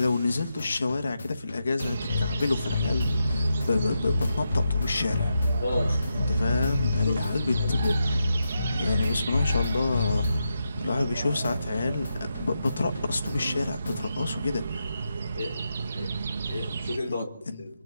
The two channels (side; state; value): both; inverted; correlation -0.86